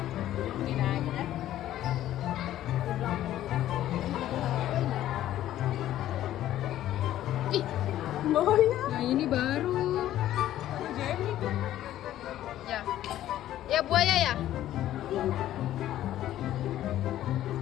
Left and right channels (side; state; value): right; quieter; 13.0 dB